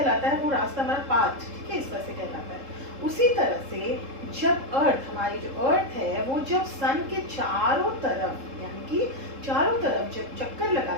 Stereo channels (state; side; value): late; left; 3.7 ms